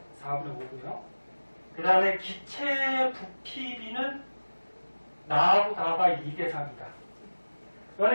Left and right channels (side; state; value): both; inverted; correlation -1.00